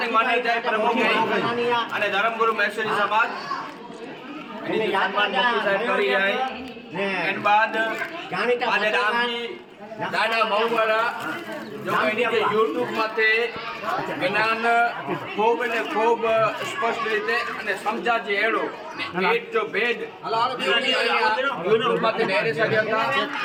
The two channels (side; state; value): both; identical; correlation 1.00